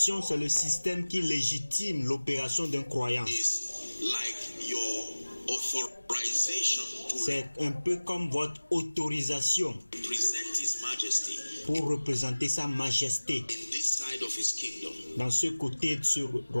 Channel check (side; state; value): both; inverted; correlation -1.00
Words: c'est le système qui légitime l'opération d'un croyant. It's like your authorization to C'est un peu comme votre autorisation represent His Majesty pour représenter sa majesté in this side of His kingdom. dans ce côté de ce